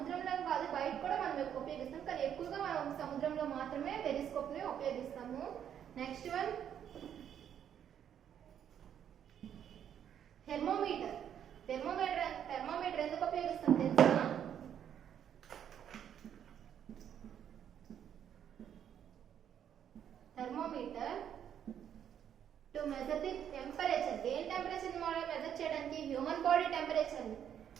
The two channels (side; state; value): left; quieter; 9.3 dB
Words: కాదు, బయట కూడా మనం ఉపయోగిస్తాం, కానీ ఎక్కువగా మనం సముద్రంలో మాత్రమే పెరిస్కోప్ ని ఉపయోగిస్తాము. Next one thermometer. థెర్మోమీటర్ ఎందుకు ఉపయోగిస్తాం తెలుసా? Thermometer to measure the temperature. దేని టెంపరేచర్ మెజర్ చేయడానికి? Human body temperature